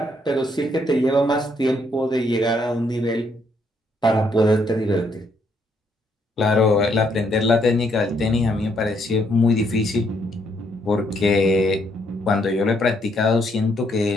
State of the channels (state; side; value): normal; both; correlation 0.72